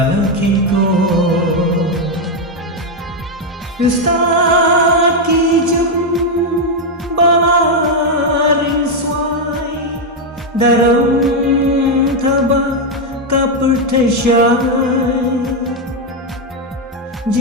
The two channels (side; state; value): both; normal; correlation 0.03